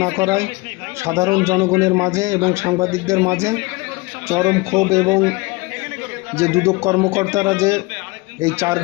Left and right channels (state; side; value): quieter; right; 24.4 dB